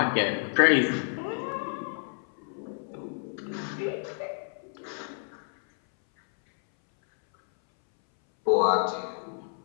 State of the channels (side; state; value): right; silent; 59 dB below the other